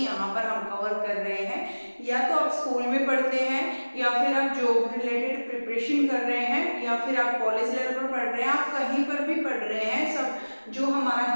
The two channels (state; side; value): inverted; both; correlation -1.00